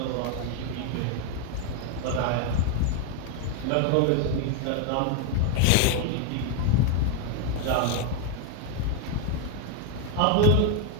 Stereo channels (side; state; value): both; different; correlation 0.01